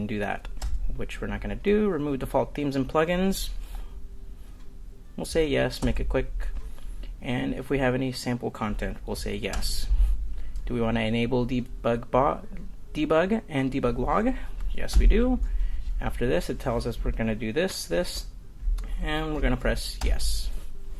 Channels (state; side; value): identical; both; correlation 1.00